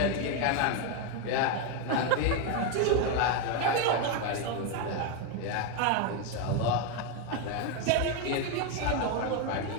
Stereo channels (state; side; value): different; both; correlation 0.02